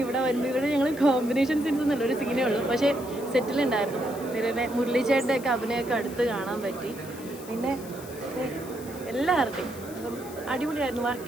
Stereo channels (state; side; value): noise; left; hiss, 17 dB below the sound